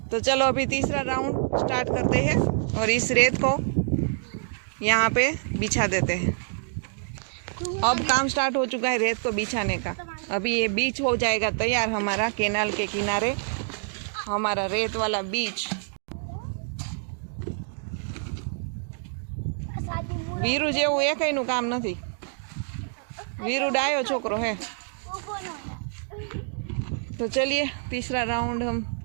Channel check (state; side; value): silent; left; digital silence